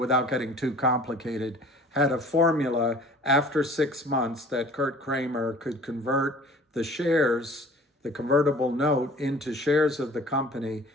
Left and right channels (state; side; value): normal; both; correlation 0.48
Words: getting too complicated, had a formula after 6 months that Kurt Kramer could convert the shares the convertible note into shares of the company